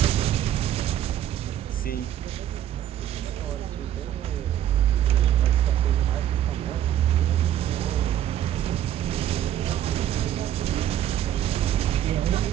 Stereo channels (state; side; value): quieter; left; 11.3 dB